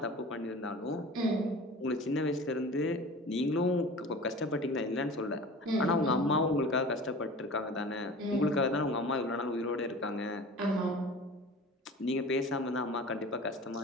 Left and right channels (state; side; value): normal; both; correlation 0.38